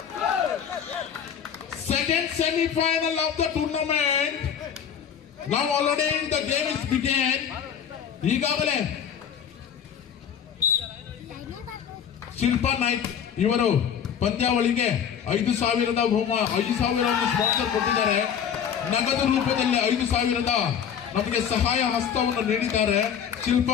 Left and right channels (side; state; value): right; quieter; 8.2 dB